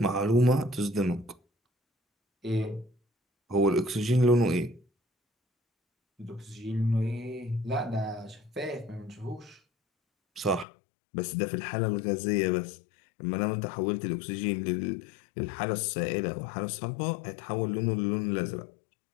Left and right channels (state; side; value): drops out; right; at 10.7 s